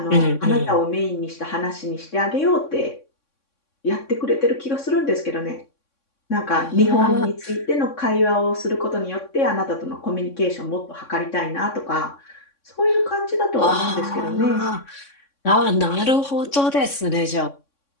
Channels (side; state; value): right; late; 3.6 ms